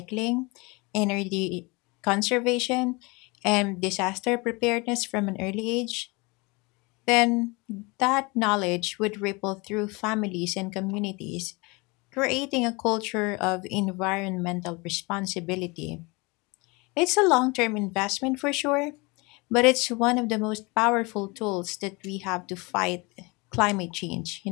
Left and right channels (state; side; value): quieter; right; 26.5 dB